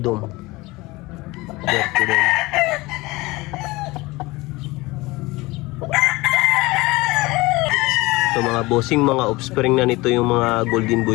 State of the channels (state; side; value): quieter; right; 21.7 dB